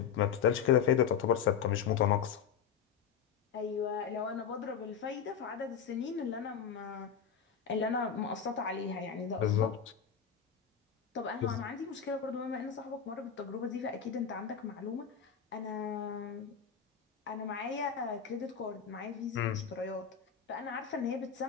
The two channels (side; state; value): right; quieter; 7.7 dB